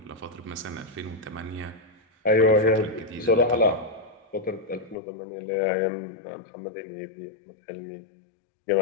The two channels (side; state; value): right; drops out; at 5.0 s